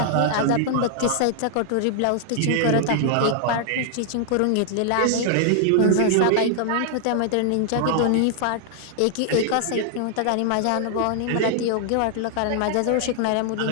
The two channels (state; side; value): different; both; correlation 0.00